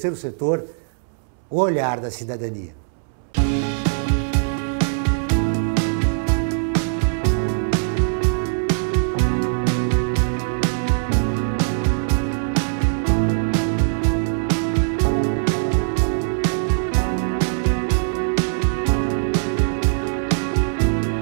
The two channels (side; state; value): left; silent; 65 dB below the other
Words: Setor, o Olhar da Cidadania.